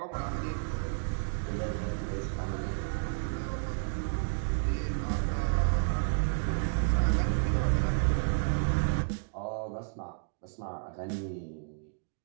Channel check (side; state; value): left; silent; digital silence